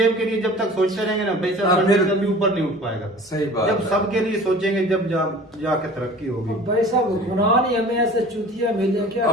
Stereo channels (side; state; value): both; normal; correlation 0.44